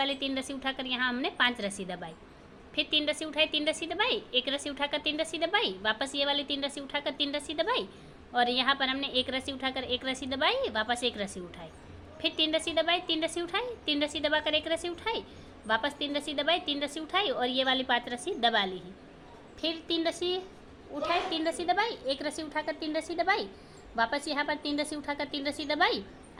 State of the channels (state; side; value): identical; both; correlation 1.00